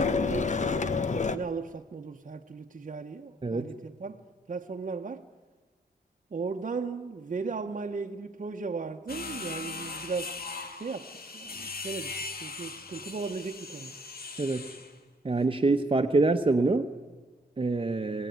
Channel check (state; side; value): normal; both; correlation 0.64